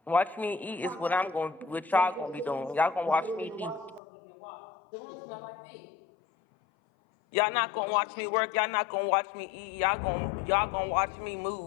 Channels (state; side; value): drops out; right; at 4.0 s